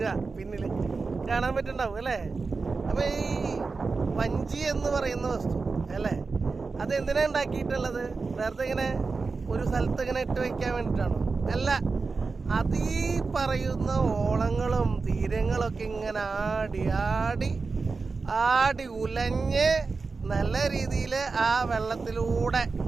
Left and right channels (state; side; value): quieter; left; 4.3 dB